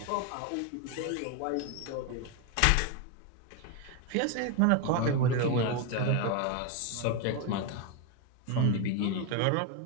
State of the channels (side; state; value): both; different; correlation 0.02